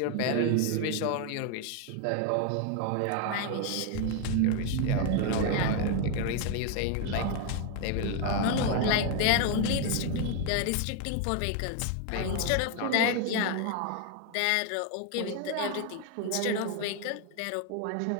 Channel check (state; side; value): different; both; correlation 0.01